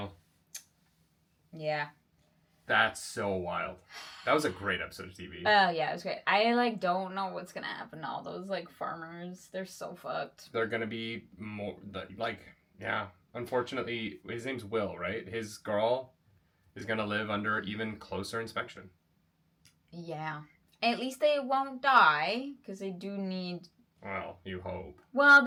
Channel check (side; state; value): both; identical; correlation 1.00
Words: Yeah. That's so wild. That was a great episode of TV. Oh, yeah, it was great. I, don't know what's gonna happen to all those, farmers. They're so fucked. They're gonna be more, yeah. Unfortunately, his name's Will, right? His girl is gonna live under even closer inspection. Yeah. At least they won't die, because they do need... Well, you hope. Well,